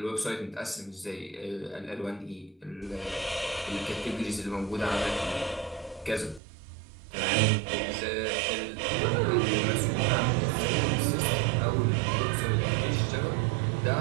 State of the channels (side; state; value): left; drops out; at 6.4 s